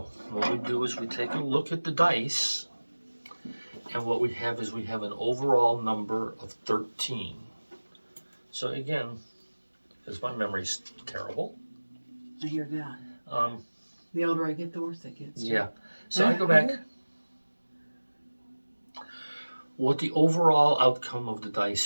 what we do is we take a look at the dice, and what we have is we have an overall number of 13. So again, because my memory's terrible. I hear that. The older I get, the worse it gets. Yeah. So I go back. What the overall outcome of the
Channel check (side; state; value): both; inverted; correlation -1.00